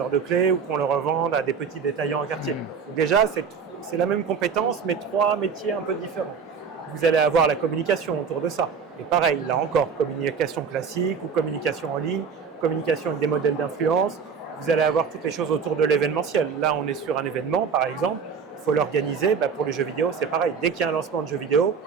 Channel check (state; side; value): quieter; left; 6.0 dB